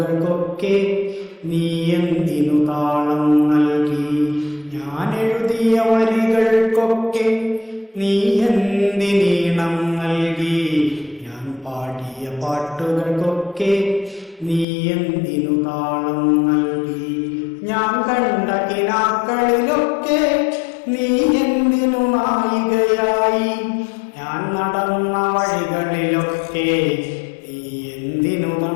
നീ എന്തിനു താളം നൽകി? ഞാൻ എഴുതിയ വരികൾക്കൊക്കെ നീ എന്തിനീണം നൽകി? ഞാൻ പാടിയ പാട്ടുകൾക്കൊക്കെ നീ എന്തിനു താളം നൽകി? ഞാൻ കണ്ട കിനാക്കളിലൊക്കെ നീ എന്തിനു നായികയായി? ഞാൻ നടന്ന വഴികളിലൊക്കെ നീ എന്തിനു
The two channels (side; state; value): right; drops out; at 14.7 s